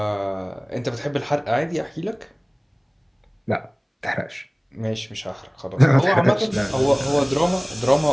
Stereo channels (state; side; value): identical; both; correlation 1.00